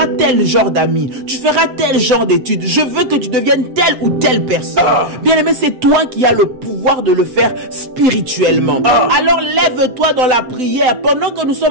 tel genre d'amis, tu feras tel genre d'études. Je veux que tu deviennes telle ou telle personne. Bien aimé, c'est toi qui as le pouvoir de le faire spirituellement. Alors lève-toi dans la prière pendant que nous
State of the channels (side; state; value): left; late; 7.9 ms